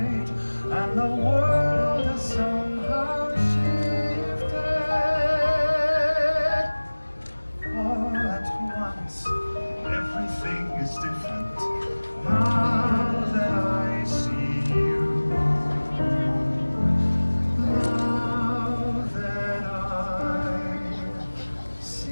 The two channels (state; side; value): inverted; both; correlation -1.00